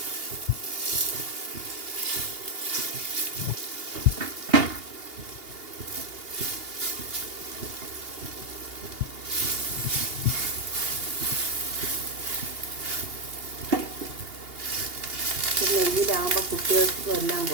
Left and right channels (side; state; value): left; late; 2.8 ms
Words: നെയ്യിലാകുമ്പോൾ കുട്ടികൾക്കും എല്ലാം